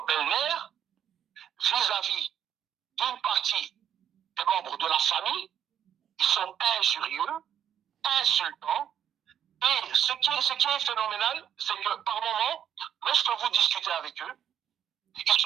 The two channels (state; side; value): quieter; left; 9.5 dB